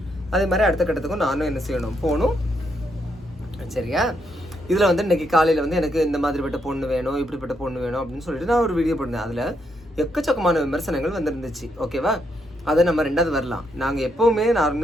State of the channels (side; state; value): both; normal; correlation 0.78